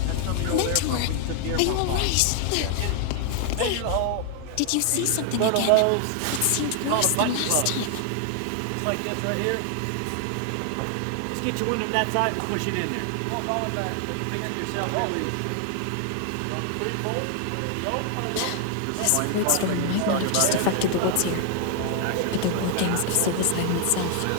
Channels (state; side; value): different; both; correlation 0.00